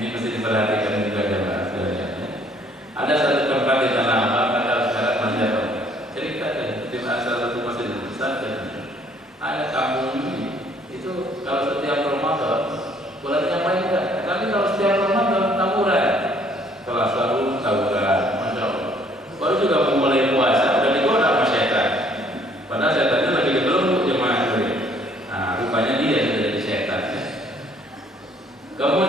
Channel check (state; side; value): normal; both; correlation 0.61